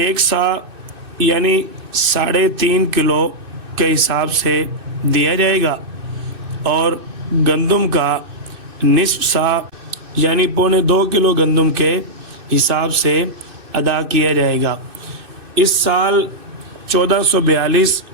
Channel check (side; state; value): left; late; 2.6 ms